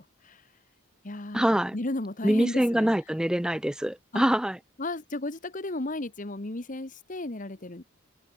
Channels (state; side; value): normal; both; correlation 0.89